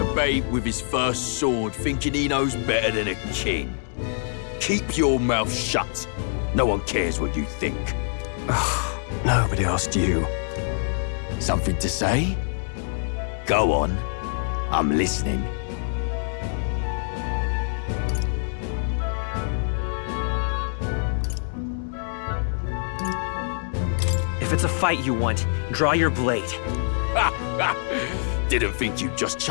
A babe with his first sword thinking he knows better than a king. Keep your mouth shut. No one cares what you think. Nobody asked you. Something to say? Go on. I'm listening. If it's a fight you want, draw your blade. Didn't think you'd just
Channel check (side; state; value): right; silent; digital silence